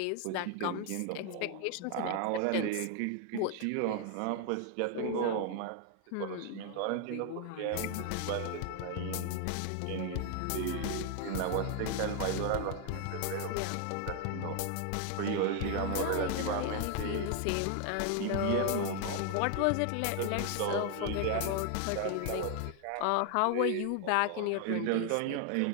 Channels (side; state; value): both; different; correlation 0.00